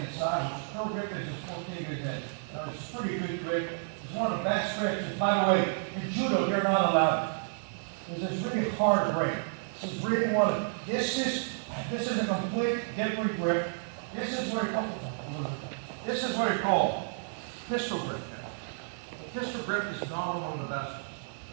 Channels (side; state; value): left; silent; digital silence